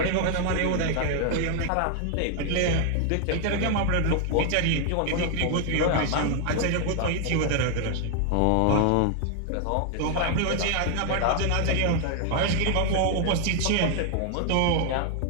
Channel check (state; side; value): different; both; correlation 0.00